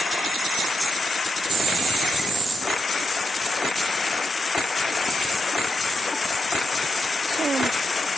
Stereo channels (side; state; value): both; normal; correlation 0.85